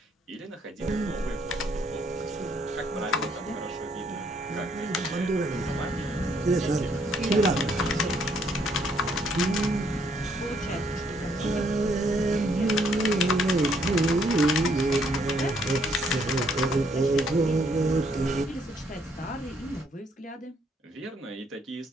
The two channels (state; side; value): normal; both; correlation 0.69